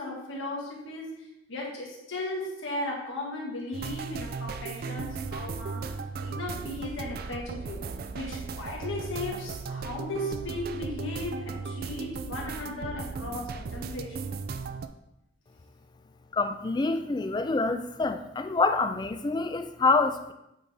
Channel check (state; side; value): normal; both; correlation 0.31